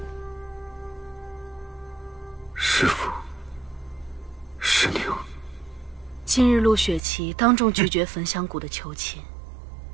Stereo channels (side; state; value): left; drops out; at 7.0 s